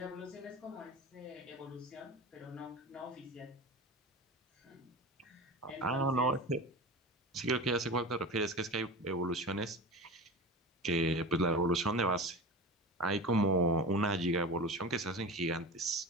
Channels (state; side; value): normal; both; correlation 0.31